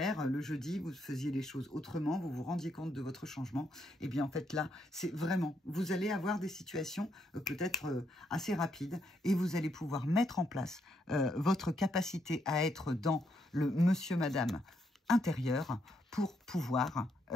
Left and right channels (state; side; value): normal; both; correlation 0.77